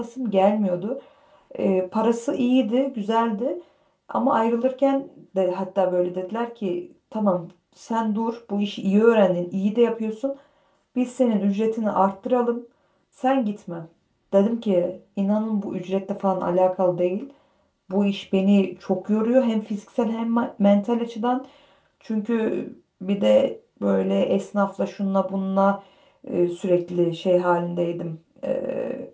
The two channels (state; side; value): identical; both; correlation 1.00